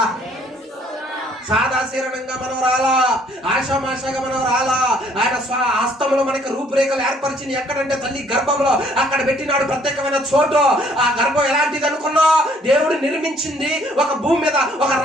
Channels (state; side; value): normal; both; correlation 0.62